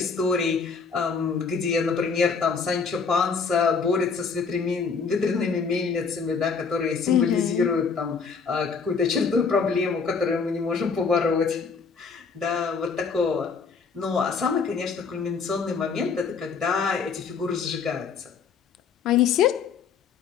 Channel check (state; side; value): quieter; right; 5.4 dB